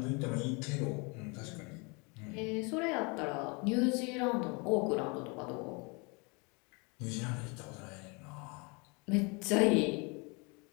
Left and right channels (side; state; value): right; quieter; 30.5 dB